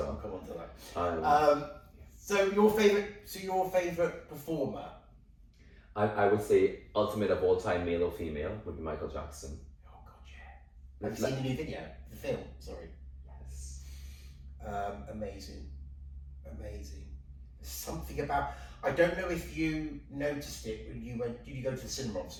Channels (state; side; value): identical; both; correlation 1.00